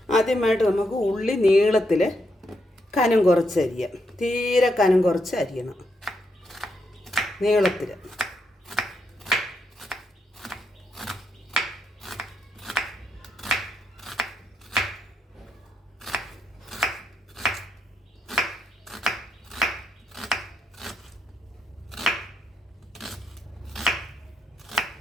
ആദ്യമായിട്ട് നമുക്ക് ഉള്ളി നീളത്തിൽ കനം കുറച്ച് അരിയാം. തീരെ കനം കുറച്ച് അരിയണം, നീളത്തിൽ.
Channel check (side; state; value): both; normal; correlation 0.80